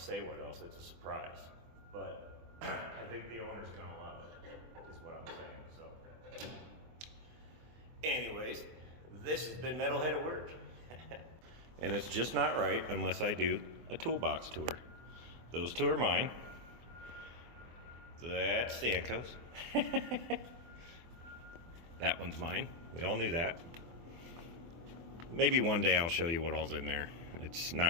say what else, it's a surprise, but I think the owner's going to love it, is what I'm saying. So anyways, this has been Metalhead at Work. And it's just not right unless I do a toolbox tour. Those two are mine. That's Stanko's. That one's mine. We all knew that. Maybe one day I'll show you what all's in there. It's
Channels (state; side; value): late; left; 24 ms